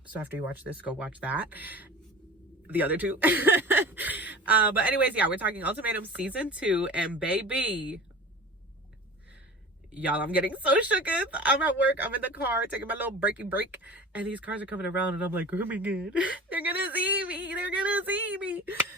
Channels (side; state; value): both; normal; correlation 0.37